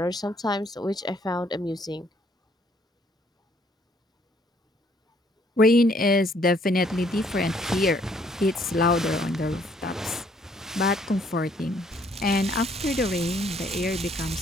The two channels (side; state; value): both; normal; correlation 0.65